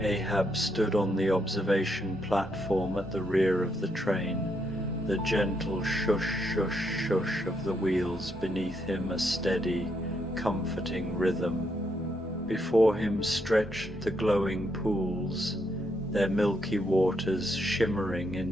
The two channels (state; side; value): normal; both; correlation 0.77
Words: stood on the observation platform at the rear of the train, the gentle shush shush shush of the wheels beneath him a steady, comforting rhythm. Before him stretched the glowing pools, their milky waters shimmering